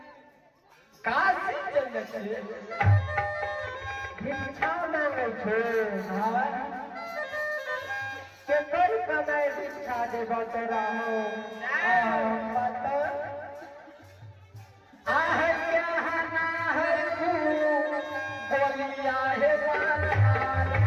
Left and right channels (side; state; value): both; identical; correlation 1.00